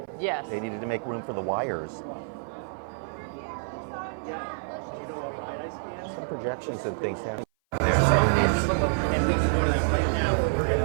Yes. They needed to make room for the wires. Some projections and things happening there.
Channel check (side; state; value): left; silent; 56 dB below the other